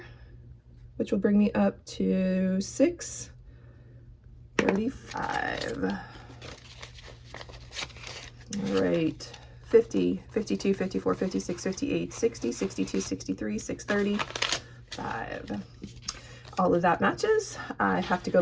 which will bring me up to 635. All right, 50, 52, 54, 56, 58, 60, 62, 63, 635. all of that matches. I have to go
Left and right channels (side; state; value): both; identical; correlation 1.00